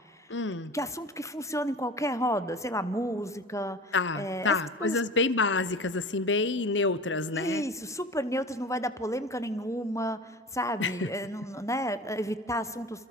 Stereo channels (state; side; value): normal; both; correlation 0.36